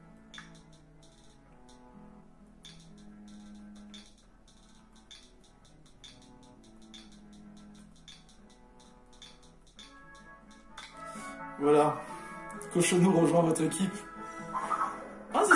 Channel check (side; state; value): both; identical; correlation 1.00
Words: Voilà. Cochonou rejoint votre équipe. Ah,